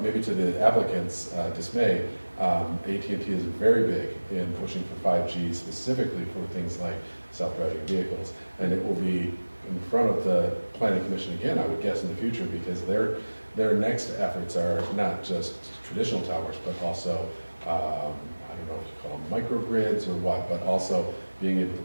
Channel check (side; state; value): both; inverted; correlation -1.00